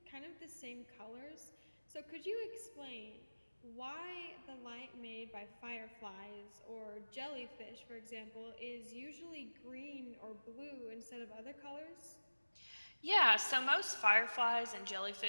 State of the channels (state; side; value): inverted; both; correlation -1.00